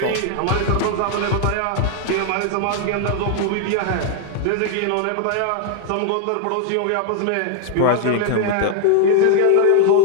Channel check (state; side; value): different; both; correlation 0.00